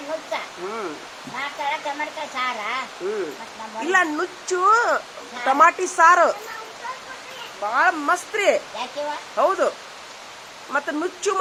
ಇಲ್ಲ ನುಚ್ಚು ಟಮಾಟಿ ಸಾರು ಬಾಳ ಮಸ್ತ್ ರೀ. ಹೌದು. ಮತ್ತೆ ನುಚ್ಚು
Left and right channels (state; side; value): identical; both; correlation 1.00